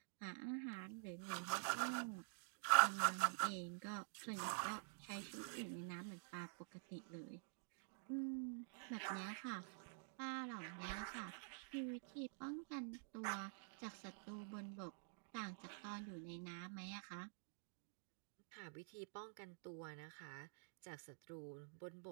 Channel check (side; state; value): left; silent; digital silence